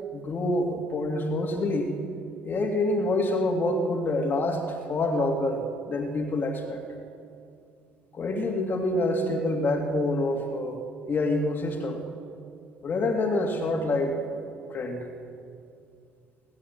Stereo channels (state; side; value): normal; both; correlation 0.65